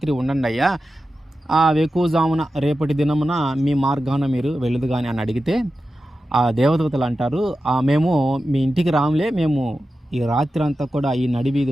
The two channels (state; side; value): normal; both; correlation 0.92